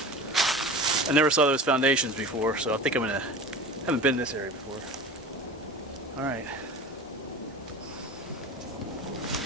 I never saw those foundations before, so I think haven't been in this area before. Alright.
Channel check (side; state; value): both; normal; correlation 0.35